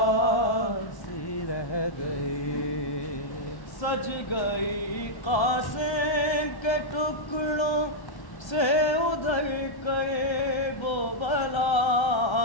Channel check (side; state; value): right; late; 1.1 ms